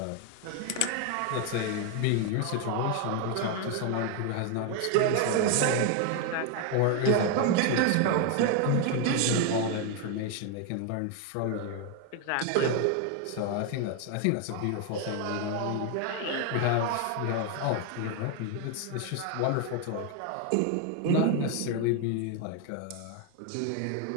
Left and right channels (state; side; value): different; both; correlation 0.01